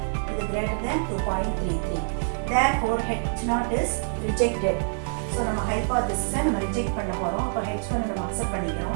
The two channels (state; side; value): silent; left; digital silence